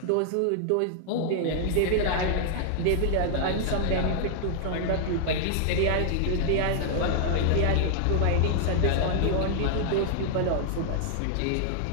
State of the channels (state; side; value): different; both; correlation 0.00